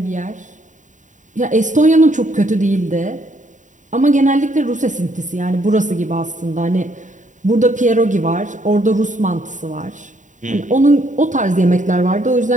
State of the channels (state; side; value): late; left; 0.36 ms